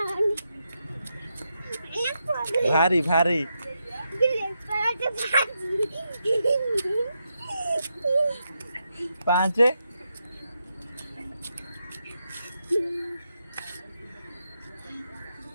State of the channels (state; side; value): inverted; both; correlation -0.84